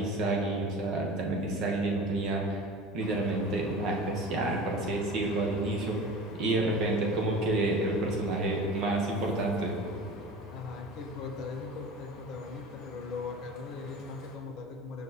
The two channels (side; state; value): both; normal; correlation 0.37